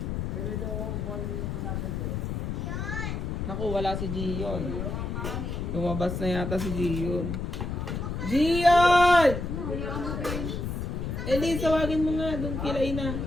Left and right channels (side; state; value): left; noise; rumble, 3 dB below the sound